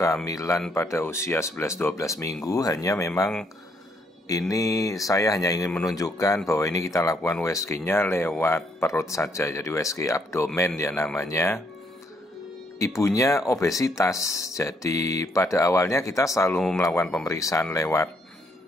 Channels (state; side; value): normal; both; correlation 0.71